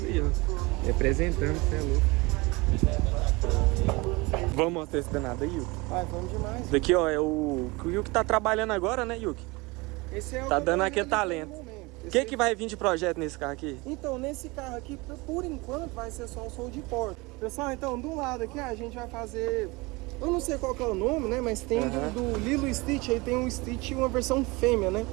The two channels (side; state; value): left; quieter; 24.4 dB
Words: ó. Representando, você é louco. Vamos mostrar esse danado aí, Yuki? Vai, vamos demais. Daqui, ó, é o Yuki tá trabalhando agora, né, Yuki? Esse é o tá dando aquele talento. O que vai vir de projeto nesse carro aqui? Então, nesse carro aqui, por enquanto, vai ser só o sol de porta. Pessoal, então, do lado aqui, a gente vai fazer... Eu não sei qual que é o nome, né? Mas tem do Lilo Stitch, aí tem um Stitch e uma versão fêmea, né?